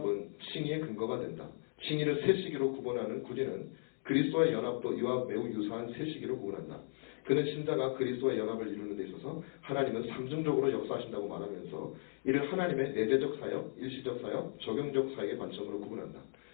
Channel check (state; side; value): silent; right; digital silence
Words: 칭의의 근거가 된다. 칭의를 세 시기로 구분하는 구디는 그리스도와의 연합도 이와 매우 유사한 세 시기로 구분한다. 그는 신자가 그리스도와 연합을 이루는 데 있어서 하나님은 삼중적으로 역사하신다고 말하면서 이를 하나님의 내재적 사역, 일시적 사역, 적용적 사역의 관점으로 구분한다.